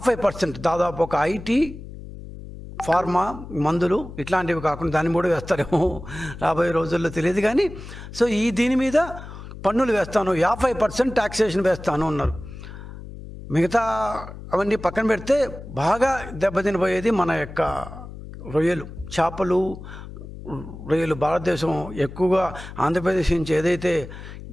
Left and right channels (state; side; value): noise; left; hum, 13 dB below the sound